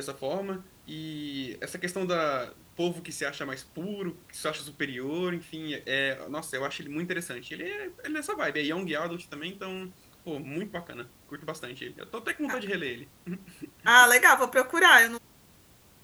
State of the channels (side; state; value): both; identical; correlation 1.00